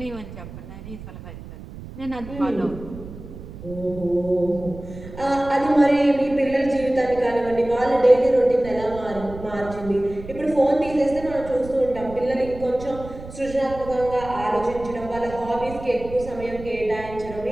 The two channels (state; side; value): noise; right; rumble, 14 dB below the sound